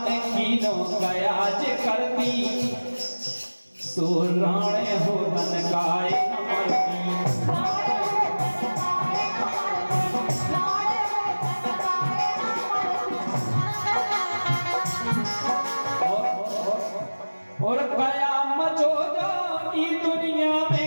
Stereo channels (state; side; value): inverted; both; correlation -1.00